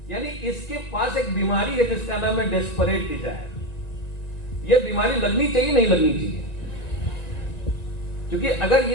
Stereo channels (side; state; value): right; late; 1.7 ms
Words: यानी इसके पास एक बीमारी है जिसका नाम है डेस्परेट डिजायर। ये बीमारी लगनी चाहिए नहीं लगनी चाहिए? क्योंकि अगर